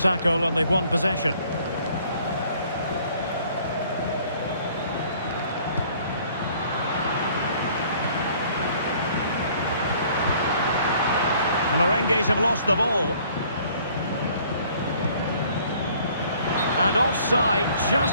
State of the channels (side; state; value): both; inverted; correlation -0.57